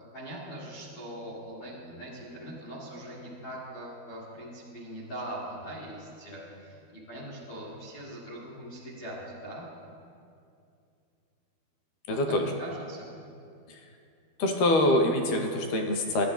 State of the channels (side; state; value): right; late; 12 ms